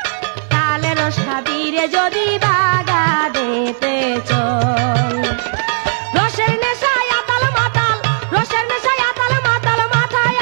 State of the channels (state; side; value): silent; left; digital silence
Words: তালে রস খাবি রে যদি বাগানেতে চল। রসের নেশায় আতাল মাতাল, রসের নেশায় আতাল মাতাল, মাথায়